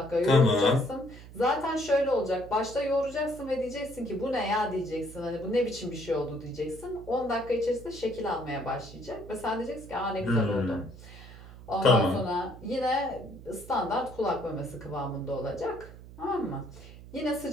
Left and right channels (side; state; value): right; noise; hum, 16 dB below the sound